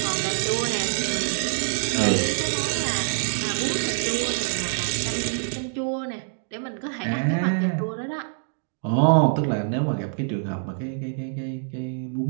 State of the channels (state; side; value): silent; left; 62 dB below the other